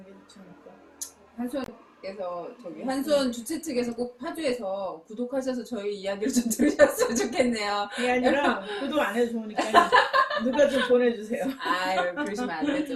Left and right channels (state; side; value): identical; both; correlation 1.00